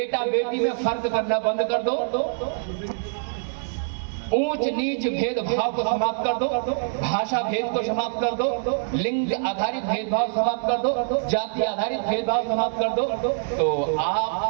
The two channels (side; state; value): left; silent; 62 dB below the other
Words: बेटी में फर्क करना बंद कर दो, ऊंच नीच भेदभाव को समाप्त कर दो, भाषा भेद को समाप्त कर दो, लिंग आधारित भेदभाव समाप्त कर दो, जाति आधारित भेदभाव समाप्त कर दो, तो